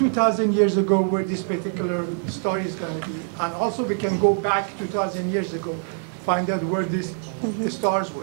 years ago where this particular star is going to be. And also we can go back 2,000 years ago, find out where the stars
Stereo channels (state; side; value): silent; left; 59 dB below the other